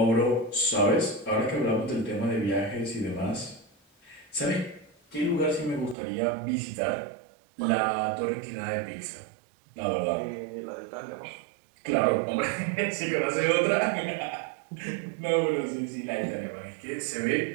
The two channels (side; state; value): left; drops out; at 6.0 s